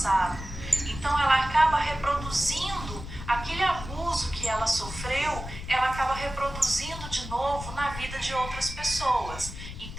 Então ela acaba reproduzindo aquele abuso que ela sofreu, ela acaba reproduzindo de novo na vida de outras pessoas.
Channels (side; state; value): left; noise; rumble, 10 dB below the sound